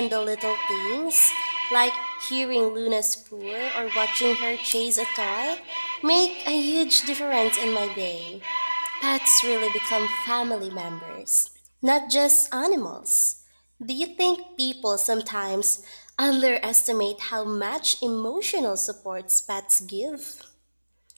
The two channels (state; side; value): inverted; both; correlation -1.00